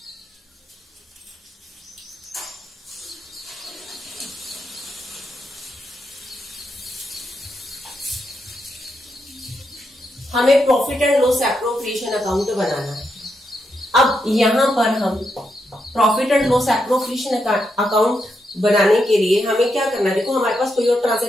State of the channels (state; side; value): normal; both; correlation 0.83